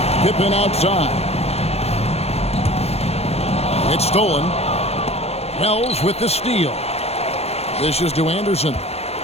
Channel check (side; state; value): right; late; 0.30 ms